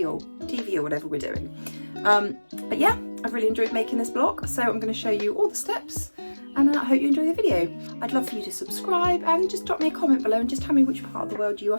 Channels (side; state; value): both; inverted; correlation -1.00